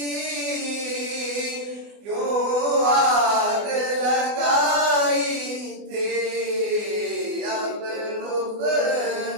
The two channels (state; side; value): late; left; 24 ms